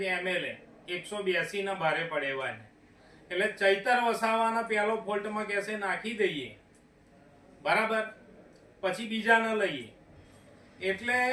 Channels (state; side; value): identical; both; correlation 1.00